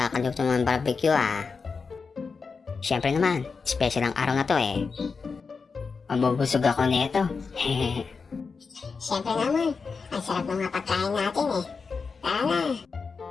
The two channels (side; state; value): right; quieter; 5.0 dB